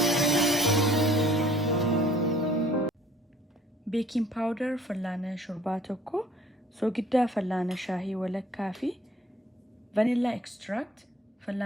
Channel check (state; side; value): normal; both; correlation 0.55